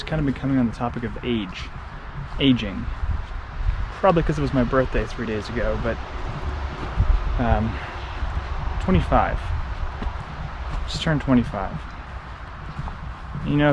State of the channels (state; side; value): identical; both; correlation 1.00